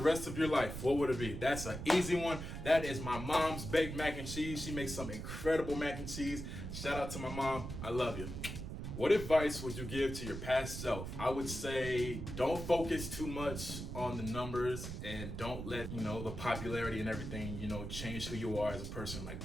of your life, what would it be? That's an easy one. That is my mom's baked mac and cheese. She makes some incredible mac and cheese. Shout out to my mom. I love you. What advice would you give to your past self? I would say don't focus too much on the numbers and don't let, the popularity and everything, change who you are as a person.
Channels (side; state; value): right; noise; rumble, 7 dB below the sound